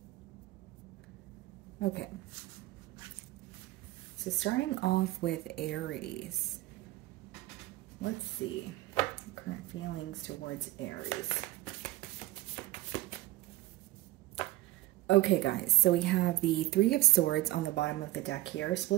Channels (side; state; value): left; quieter; 17.4 dB